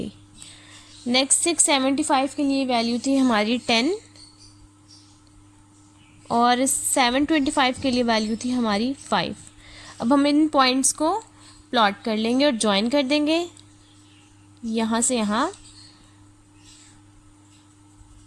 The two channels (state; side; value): identical; both; correlation 1.00